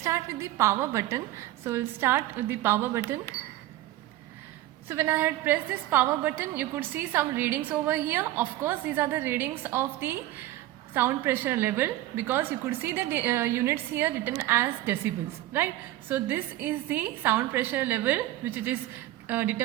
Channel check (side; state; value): left; quieter; 15.3 dB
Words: with the power button. So we'll start with the power button. So when I had pressed this power button, you could see some readings over here. Of course, these are the readings of the sound pressure level, because you could see the units here written as decibels, right? So this is the sound pressure level which it is